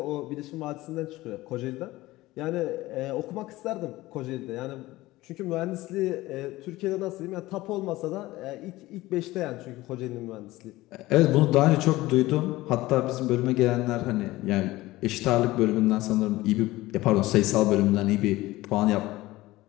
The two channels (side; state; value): right; quieter; 18.3 dB